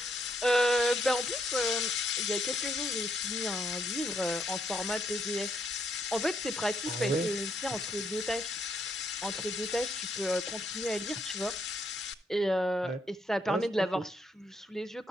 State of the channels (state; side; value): normal; both; correlation 0.74